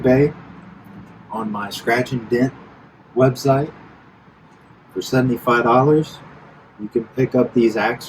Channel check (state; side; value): identical; both; correlation 1.00